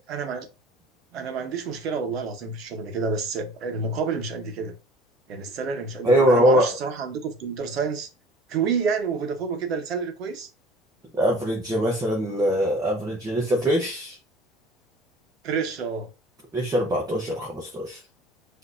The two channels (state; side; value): normal; both; correlation 0.48